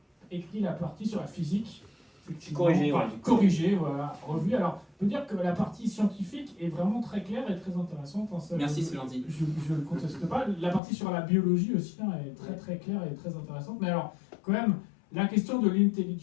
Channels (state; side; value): drops out; right; at 10.8 s